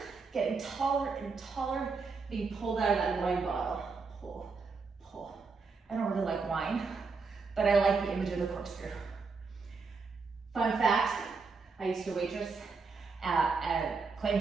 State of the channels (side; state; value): left; quieter; 4.6 dB